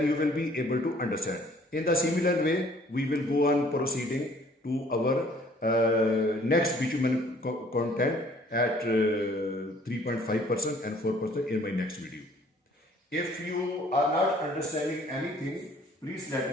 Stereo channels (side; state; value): both; normal; correlation 0.57